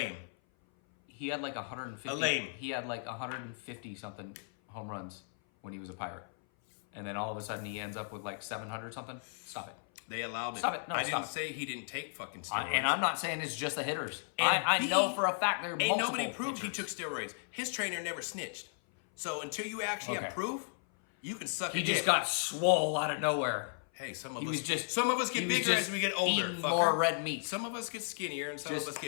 He had like 150... A lame. He had like 150 something home runs when he was a Pirate. And then all of a sudden he ends up with like 700 something. Stop it. They allowed it. Stop it. No, I stop didn't it. say he didn't take fucking steroids. And I'm not saying it's just the hitters. And I B, know for a fact there are Ain't multiple nobody proved he hitters. took steroids. His trainer never snitched. So until you actually have Okay. proof, you can suck He a dick. just got swole out of nowhere. Hey, some of He was us just- some of us he get was bigger just as we get older. eating Fucker. more red meat. Some of us get skinnier and some Just- of us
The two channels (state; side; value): silent; right; 55 dB below the other